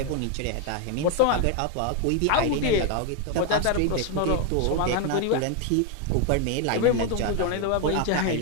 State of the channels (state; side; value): different; both; correlation 0.01